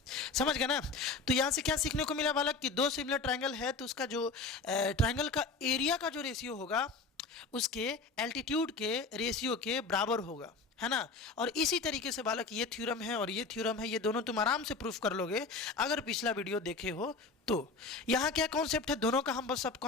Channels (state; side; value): quieter; right; 4.1 dB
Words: समझ गए ना। तो यहाँ से क्या सीखने को मिला बालक कि दो सिमिलर ट्रायंगल है तो उसका जो ट्रायंगल का एरिया का जो रेशियो होगा उसके एल्टीट्यूड के रेशियो के बराबर होगा, है ना। और इसी तरीके से बालक ये थ्योरम है और ये थ्योरम है, ये दोनों तुम आराम से प्रूफ कर लोगे अगर पिछला वीडियो देखे हो तो। यहाँ क्या कॉन्सेप्ट है, दोनों का हम बस सब